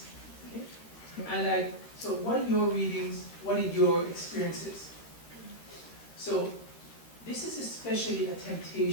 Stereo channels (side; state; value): right; late; 13 ms